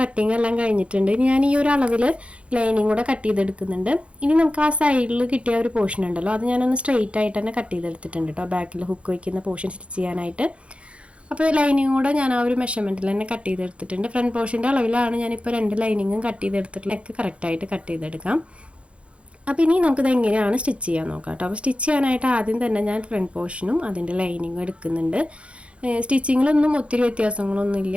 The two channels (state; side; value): late; left; 0.060 ms